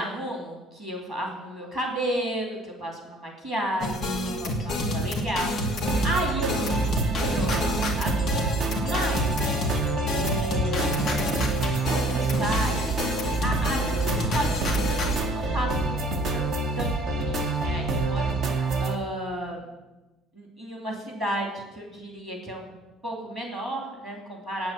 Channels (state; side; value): normal; both; correlation 0.54